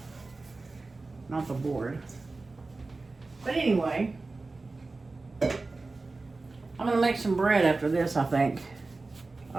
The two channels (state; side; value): quieter; left; 3.5 dB